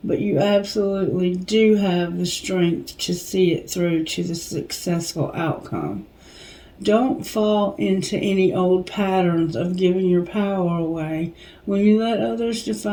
but you absolutely do have the strength to see it through to the successful outcome. Don't fall into any old patterns of giving your power away. When you let others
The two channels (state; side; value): identical; both; correlation 1.00